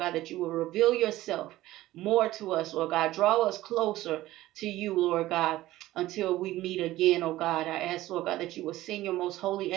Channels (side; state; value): left; quieter; 16.1 dB